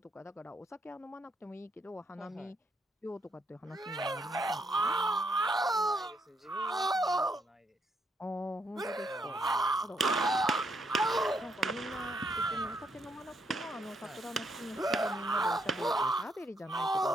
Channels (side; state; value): both; normal; correlation 0.74